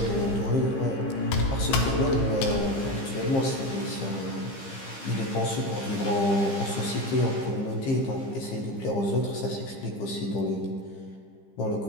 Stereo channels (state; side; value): late; right; 15 ms